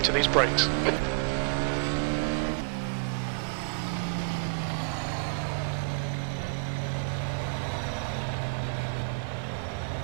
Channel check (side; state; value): left; quieter; 34.8 dB